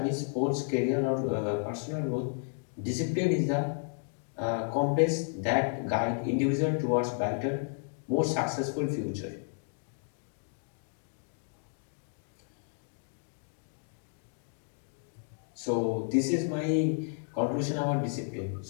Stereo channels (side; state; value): right; silent; 56 dB below the other